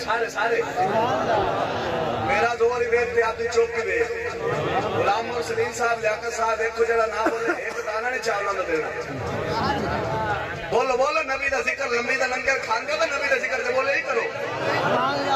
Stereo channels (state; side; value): identical; both; correlation 1.00